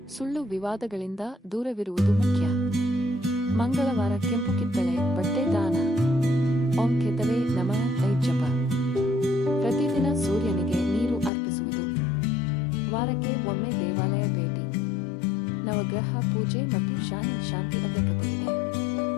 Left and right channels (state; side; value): drops out; right; at 11.3 s